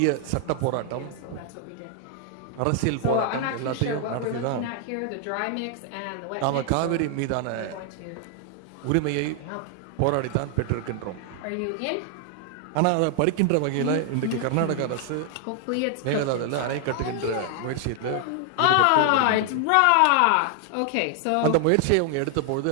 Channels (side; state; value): both; different; correlation 0.00